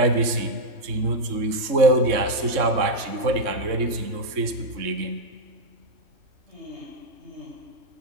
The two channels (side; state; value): left; late; 3.6 ms